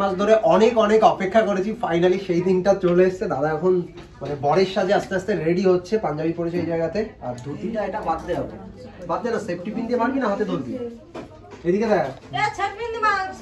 মাস ধরে অনেক অনেক অপেক্ষা করেছি, ফাইনালি সেই দিনটা চলে এসেছে। দাদা এখন মানে বরের সাজে আস্তে আস্তে রেডি হচ্ছে, পাঞ্জাবি পরেছে এই জায়গাতে। আর ধুতিটা এটা বাদ দে হবে, বাদ দে না। সেফটি পিন দিয়ে মারবি না হাতে ধরবি? এদিকে দেখ,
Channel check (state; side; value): identical; both; correlation 1.00